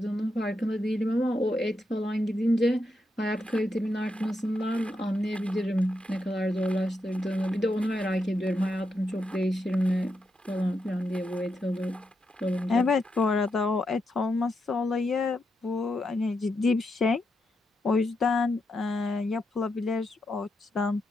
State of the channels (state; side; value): normal; both; correlation 0.83